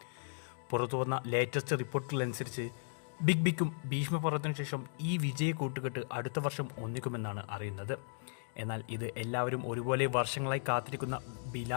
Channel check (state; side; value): silent; right; 54 dB below the other